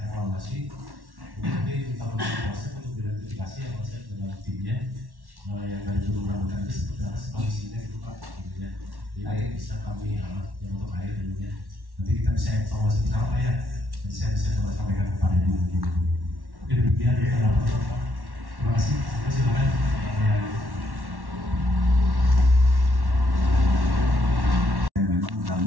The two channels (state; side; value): late; left; 1.1 ms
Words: evaluasi. Mungkin nanti kita melakukan proses untuk identifikasi yang proses dengan timnya yang dari dulu ramukan itu seperti apa kondisinya gitu Pak. Intinya, jadi bisa kami yang untuk air ininya. Nanti kita bisa evaluasi bersama Pak ya. Nanti saya bisa coba sampaikan kepada Ibu. Oke, demikian ya kalau Pak. Terima kasih. Silakan.